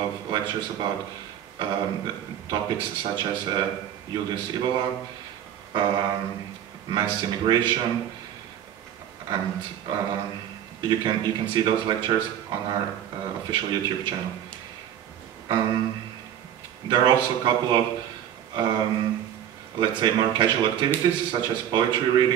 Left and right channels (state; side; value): quieter; left; 10.2 dB